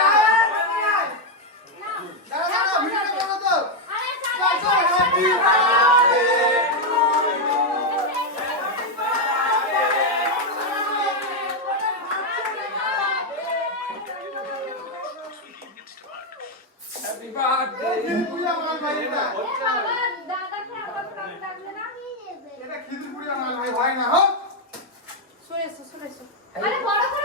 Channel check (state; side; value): normal; both; correlation 0.02